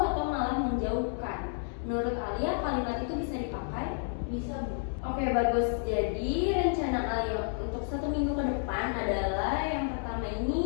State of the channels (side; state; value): right; silent; digital silence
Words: atau malah menjauhkan? Menurut Alia, kalimat itu bisa dipakai? Bisa Bu. Oke, bagus. Jadi rencana Alia untuk 1 minggu ke depan adalah yang pertama